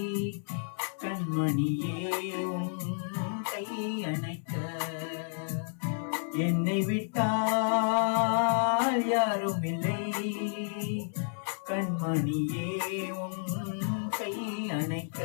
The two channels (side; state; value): right; silent; digital silence